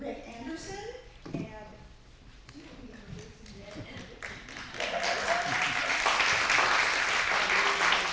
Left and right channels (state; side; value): identical; both; correlation 1.00